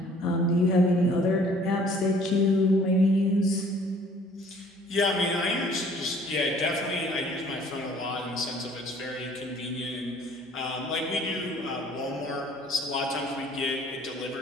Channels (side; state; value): both; normal; correlation 0.56